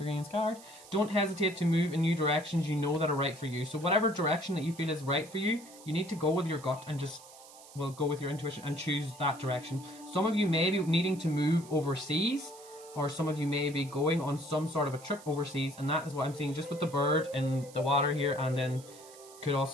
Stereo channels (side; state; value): right; noise; hiss, 20 dB below the sound